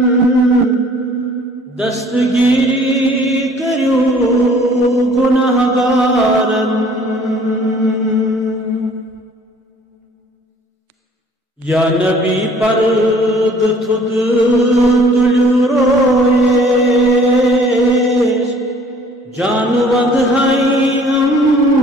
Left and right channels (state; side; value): normal; both; correlation 0.54